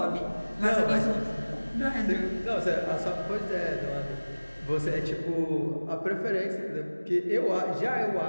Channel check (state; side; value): inverted; both; correlation -1.00